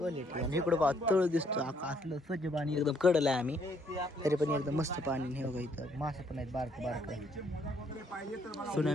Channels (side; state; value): both; normal; correlation 0.68